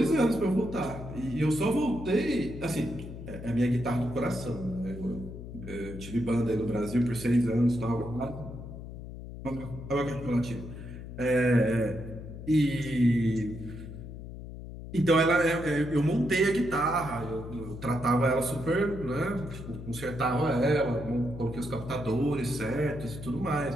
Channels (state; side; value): noise; left; hum, 11 dB below the sound